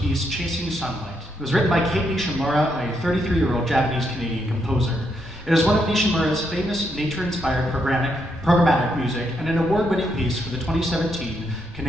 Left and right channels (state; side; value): normal; both; correlation 0.78